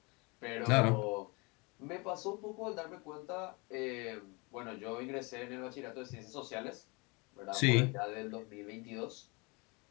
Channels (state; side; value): quieter; right; 28.2 dB